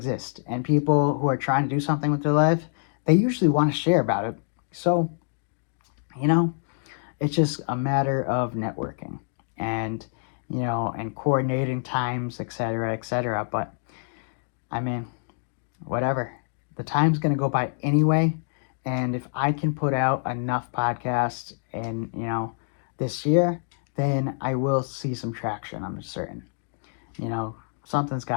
and people who are trying to do something with their life, they usually want to share about it. So, it's just a matter of networking and, and coordinating times, etc., etc. But I mean, whatever. The time's going to go by anyway. And if I can put out enough podcasts in, this year, then I will see some traction, I'm certain. Something's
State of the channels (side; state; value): right; silent; digital silence